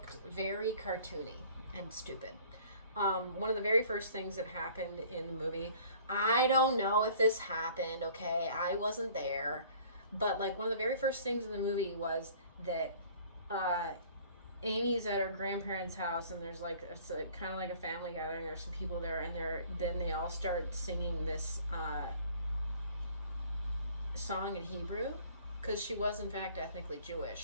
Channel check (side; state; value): both; inverted; correlation -0.52